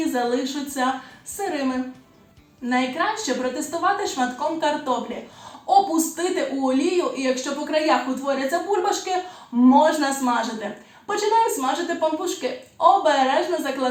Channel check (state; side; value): identical; both; correlation 1.00